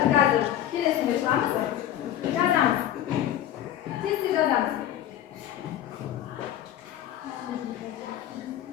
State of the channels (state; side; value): quieter; right; 11.6 dB